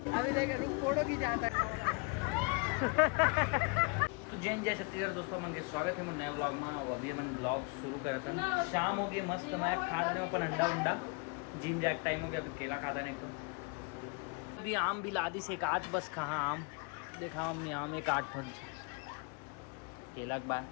अभी देख फोटो की जाता है। जैन जय छत्तीसगढ़ दोस्तों, मन के स्वागत है नए ब्लॉग में। और अभी मन ब्लॉग शुरू करा था, शाम हो गई मस्त। मैं खा रहे अपन अंडा उंडा, जिम जैक टाइम हो गया। अभी केला खाता नहीं तो अभी आम भी ला दी से एक आठ, बस कहाँ आम देखा हमने, आम एक आठ फल केला के बाद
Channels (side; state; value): right; quieter; 32.0 dB